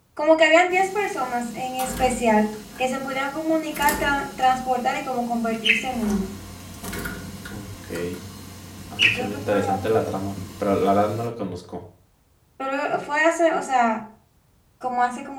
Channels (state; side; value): identical; both; correlation 1.00